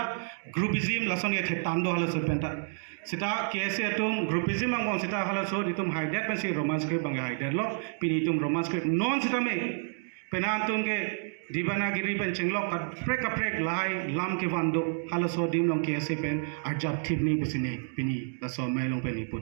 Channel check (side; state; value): left; silent; 58 dB below the other